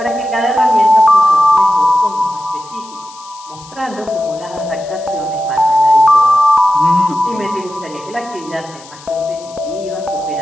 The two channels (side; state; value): left; noise; hiss, 21 dB below the sound